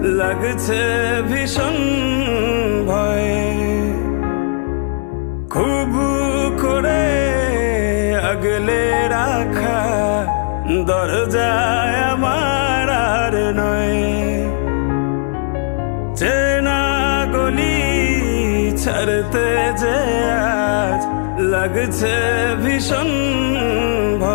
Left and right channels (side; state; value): right; silent; digital silence